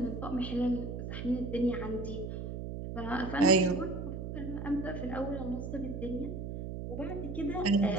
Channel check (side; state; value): right; noise; hum, 6 dB below the sound